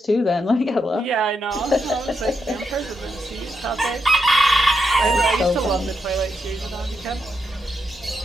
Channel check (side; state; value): both; normal; correlation 0.83